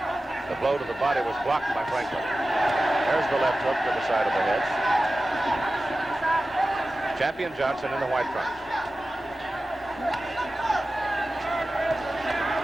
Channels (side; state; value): both; normal; correlation 0.95